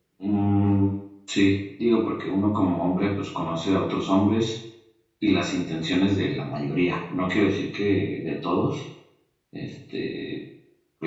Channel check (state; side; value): identical; both; correlation 1.00